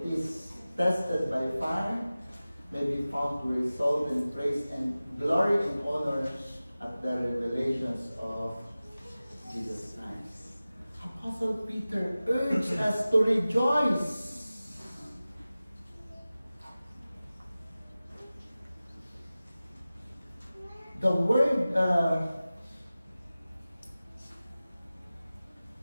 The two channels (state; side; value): inverted; both; correlation -0.97